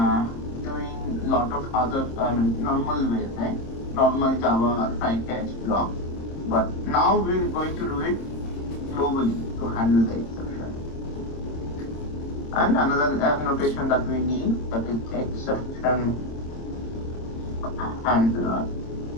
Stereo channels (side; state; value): right; late; 26 ms